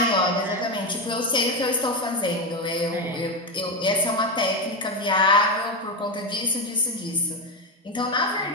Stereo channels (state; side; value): normal; both; correlation 0.12